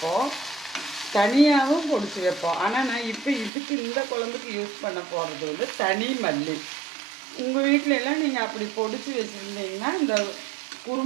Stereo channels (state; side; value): drops out; left; at 3.5 s